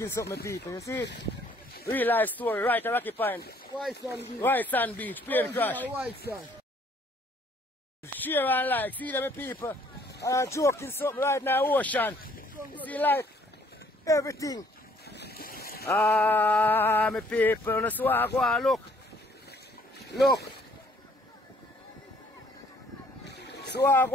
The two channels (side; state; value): both; normal; correlation 0.62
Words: something, people. You see it? Real life story right at Rocky Point. White sand beach. White sand beach. Plane crash. White sand. Share and like, see them people. I'm joking something right now, ocean. You see like everything. Ah, my people, that's why I go and look. Look. So I